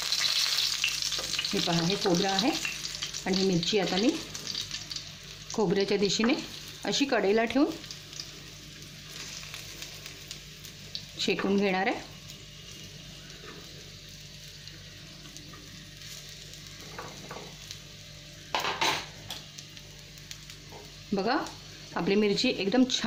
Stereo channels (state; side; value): identical; both; correlation 1.00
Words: हे पहा, हे खोबरं आहे आणि ही मिरची आता मी खोबऱ्याच्या दिशेने अशी कढईला ठेवून शेकून घेणार आहे. बघा, आपली मिरची एकदम